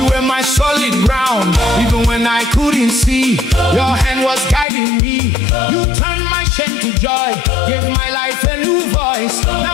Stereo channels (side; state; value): right; drops out; at 4.7 s